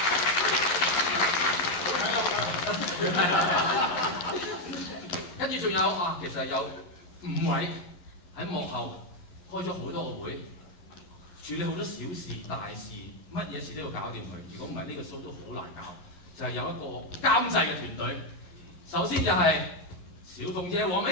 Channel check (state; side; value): late; right; 11 ms